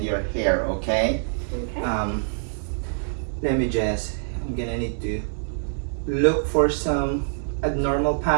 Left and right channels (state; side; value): silent; left; digital silence